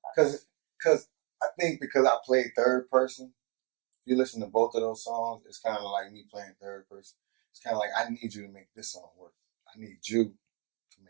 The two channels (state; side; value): quieter; left; 31.4 dB